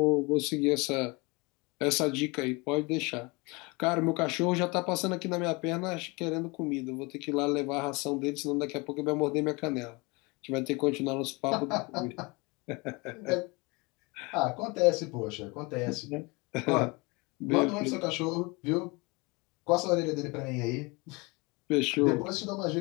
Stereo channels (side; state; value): right; quieter; 26.7 dB